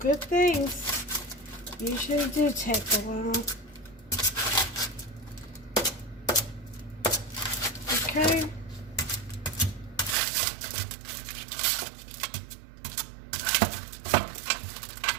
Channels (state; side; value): drops out; left; at 10.2 s